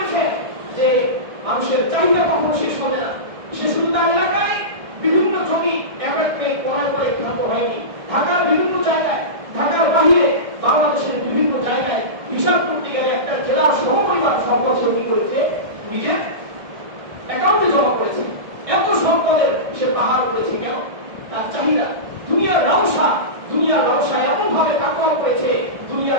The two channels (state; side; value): late; left; 1.6 ms